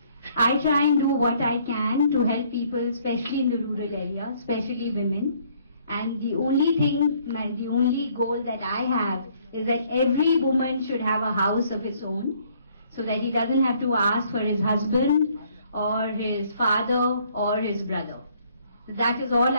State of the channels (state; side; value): inverted; both; correlation -0.64